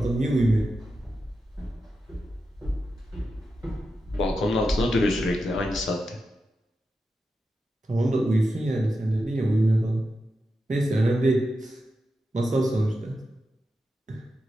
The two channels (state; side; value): normal; both; correlation 0.89